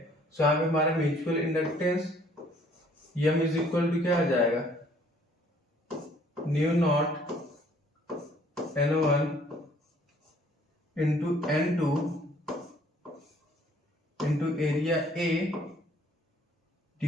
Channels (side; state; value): both; normal; correlation 0.60